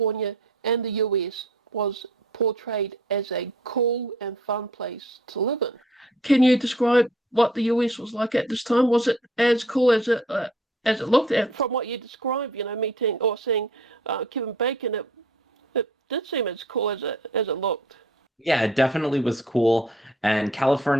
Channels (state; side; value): normal; both; correlation 0.56